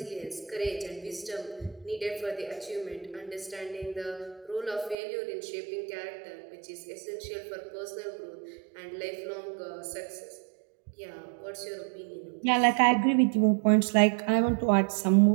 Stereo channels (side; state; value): left; drops out; at 5.0 s